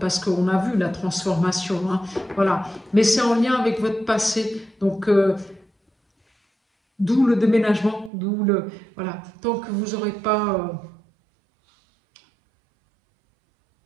parce qu'on a vu la transformation. Hein, voilà. Mais c'est en lien avec votre passé. Donc, d'où le déménagement, d'où le... Voilà. Tant que vous n'aurez pas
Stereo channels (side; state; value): left; drops out; at 8.1 s